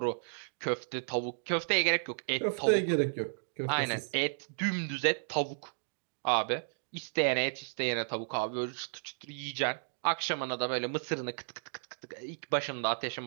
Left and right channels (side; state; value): left; silent; digital silence